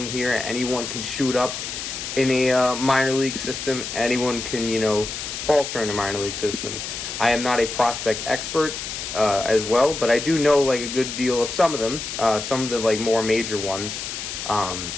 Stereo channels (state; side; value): noise; left; hiss, 6 dB below the sound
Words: here. Anyone can shoot up in a minor league system. Anyone can, falter in a minor league system. I am not a prospect expert as well, but I do know like a good deal of some of them. Some of the like more major ones.